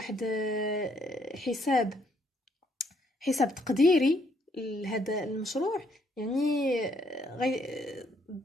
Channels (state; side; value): normal; both; correlation 0.70